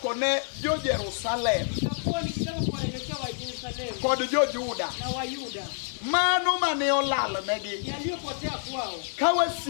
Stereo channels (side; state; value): right; silent; 60 dB below the other